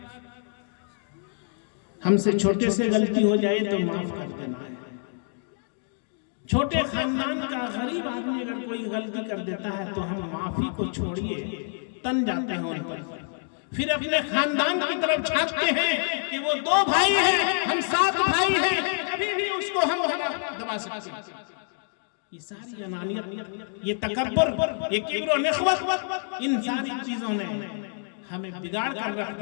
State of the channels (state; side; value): silent; right; 60 dB below the other